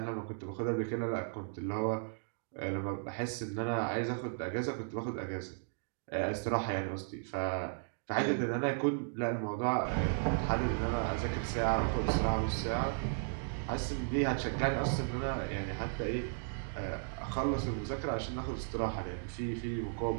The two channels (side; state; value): left; silent; digital silence